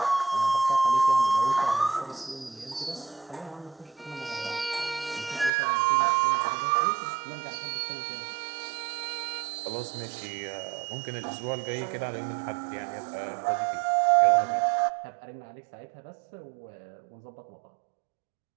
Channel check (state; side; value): drops out; left; at 5.5 s